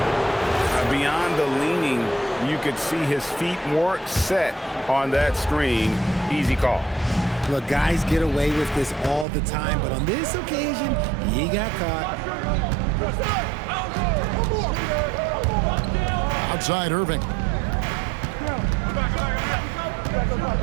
Beyond the leaning, you could see his feet weren't set on that screen. Easy call. Look, guys get away with this all the time, but on this occasion, he got caught. Outside Irving.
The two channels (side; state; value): left; drops out; at 9.2 s